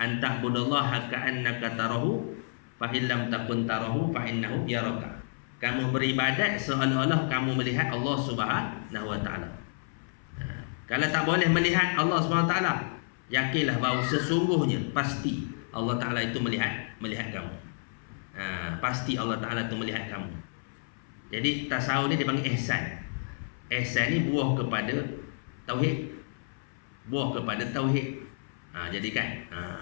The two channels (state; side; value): silent; right; 58 dB below the other